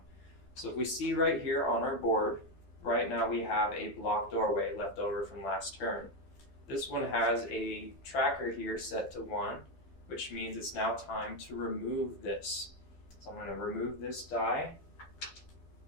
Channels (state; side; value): late; right; 12 ms